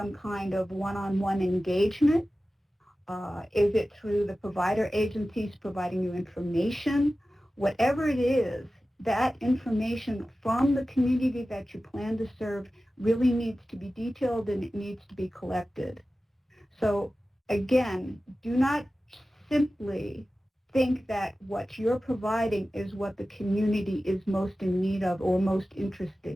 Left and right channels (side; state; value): both; normal; correlation 0.95